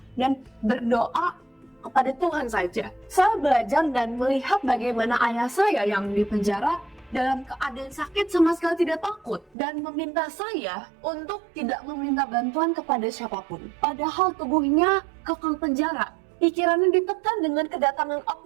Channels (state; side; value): drops out; left; at 9.5 s